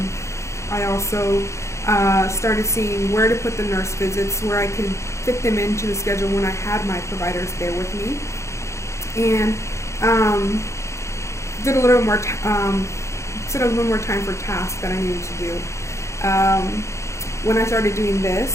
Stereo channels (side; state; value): right; late; 0.14 ms